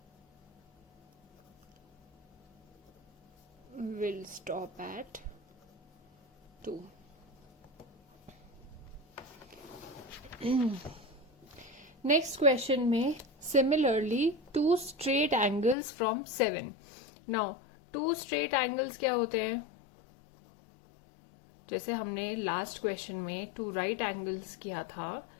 will stop at 2. Next question में similarly 2 straight angles from 7. Now 2 straight angles क्या होते हैं? जैसे हमने लास्ट क्वेश्चन में 2 राइट एंगल्स किया था,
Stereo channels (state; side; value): drops out; right; at 15.8 s